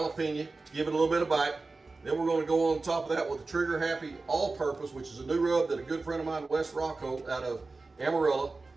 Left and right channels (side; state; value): left; quieter; 3.7 dB